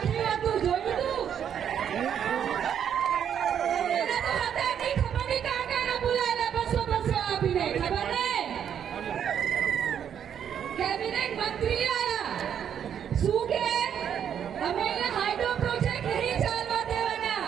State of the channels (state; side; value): quieter; left; 8.7 dB